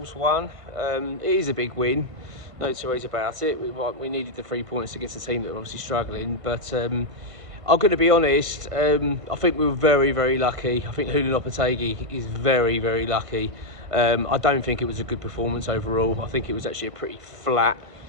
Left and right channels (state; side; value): late; left; 1.6 ms